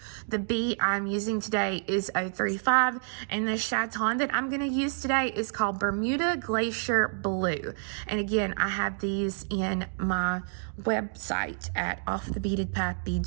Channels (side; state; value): left; silent; digital silence